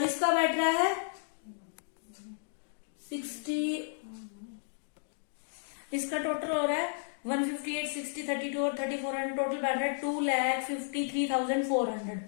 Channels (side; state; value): right; silent; digital silence